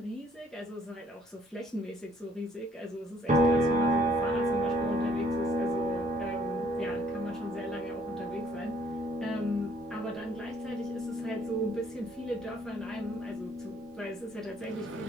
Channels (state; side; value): normal; both; correlation 0.63